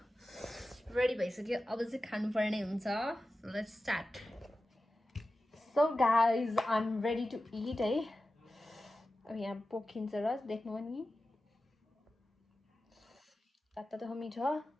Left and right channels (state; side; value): normal; both; correlation 0.94